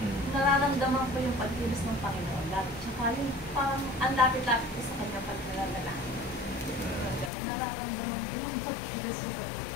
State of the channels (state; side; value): drops out; right; at 7.3 s